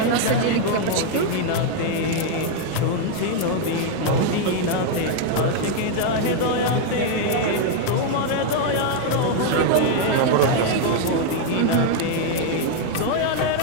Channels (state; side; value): different; both; correlation 0.00